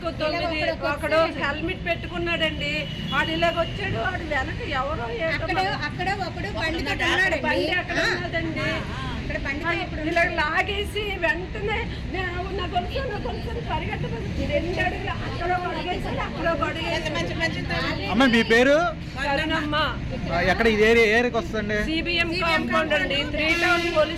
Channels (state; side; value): identical; both; correlation 1.00